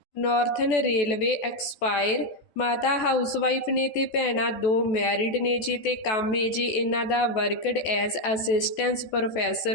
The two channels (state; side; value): late; right; 14 ms